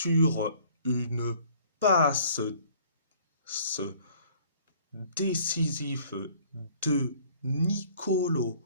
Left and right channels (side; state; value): both; inverted; correlation -0.56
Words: une passe décisive de Nicolo